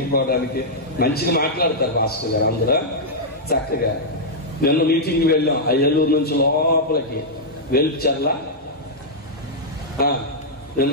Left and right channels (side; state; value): both; normal; correlation -0.07